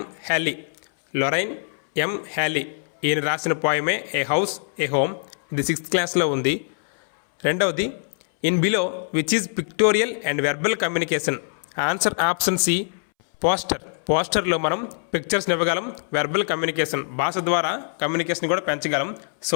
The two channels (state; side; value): silent; right; 63 dB below the other